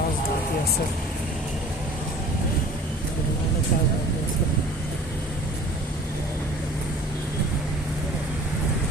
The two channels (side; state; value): both; normal; correlation 0.46